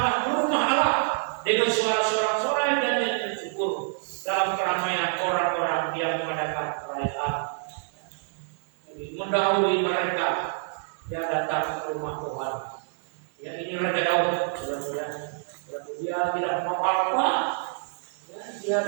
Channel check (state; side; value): silent; left; digital silence